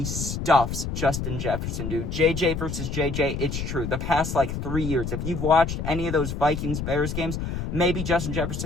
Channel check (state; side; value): noise; left; rumble, 4 dB below the sound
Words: stuffs Justin Jefferson, dude. JJ versus JJ, it's true. The past, 3 years, if you've watched any of those Vikings-Bears games, maybe Justin